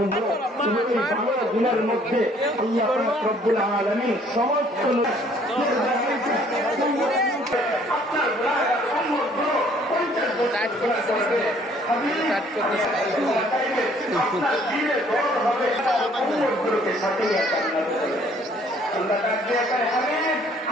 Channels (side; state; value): both; normal; correlation 0.60